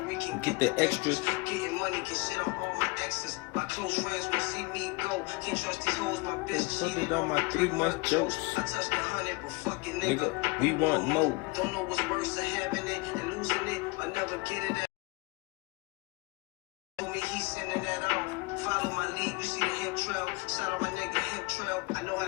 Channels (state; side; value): quieter; right; 25.6 dB